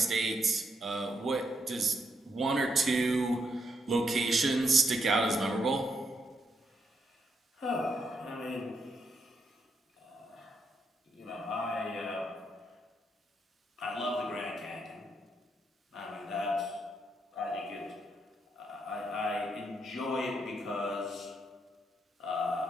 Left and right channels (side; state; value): both; normal; correlation 0.79